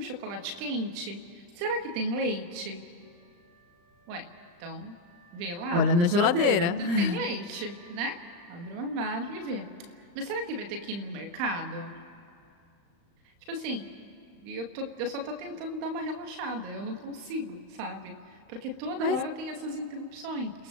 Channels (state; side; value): late; left; 35 ms